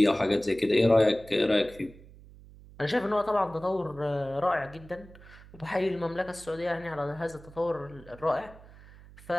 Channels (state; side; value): noise; right; hum, 21 dB below the sound